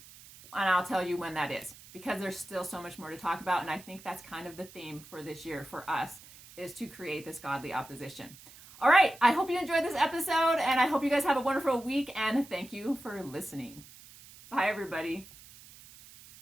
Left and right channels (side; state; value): right; noise; hiss, 20 dB below the sound